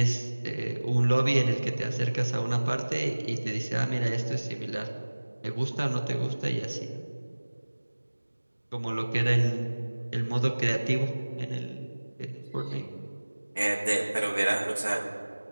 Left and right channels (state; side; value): inverted; both; correlation -1.00